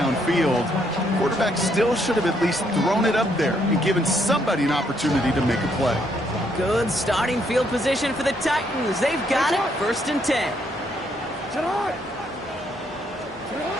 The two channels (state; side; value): normal; both; correlation 0.72